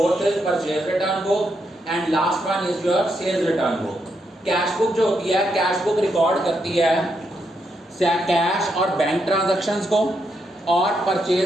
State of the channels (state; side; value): normal; both; correlation 0.80